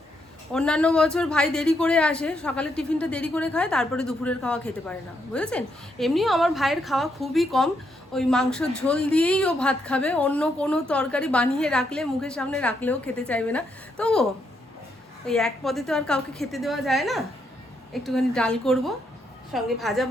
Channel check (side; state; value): both; normal; correlation 0.77